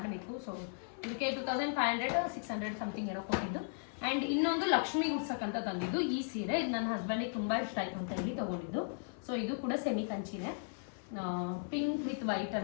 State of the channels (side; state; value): right; silent; 54 dB below the other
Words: ಸೊ ಇದಕ್ಕೆ 2500 600 ಸಮಥಿಂಗ್ ಏನೋ ಕೊಟ್ಟಿದ್ದು. ಆ್ಯಂಡ್ ಇನ್ನೊಂದು ಲಕ್ಷ್ಮಿ ಉಡ್ಸಕ್ಕಂತ ತಂದಿದ್ದು ಈ ಸೀರೆ. ಇದು ನನ್ನ ಹಸ್ಬೆಂಡಿಗೆ ತುಂಬ ಇಷ್ಟ ಆಯಿತು ಅಂತ ಹೇಳಿ ತೊಗೊಂಡಿದ್ದು. ಸೊ ಇದು ಕೂಡ ಸೆಮಿ ಕಂಚಿನೇ, ಪಿಂಕ್ ವಿತ್